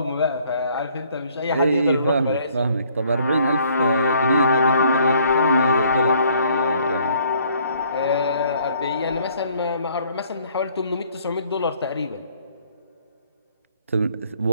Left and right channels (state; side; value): inverted; both; correlation -0.62